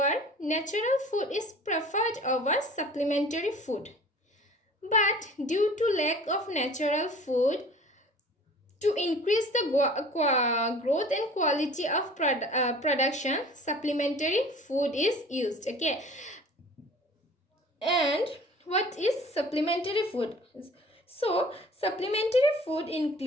natural food is preferred over supplementary food, but due to lack of natural food, to increase the growth and quality of production, supplementary food is used. Okay, and what is supplementary food? So supplementary food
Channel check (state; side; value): normal; both; correlation 0.46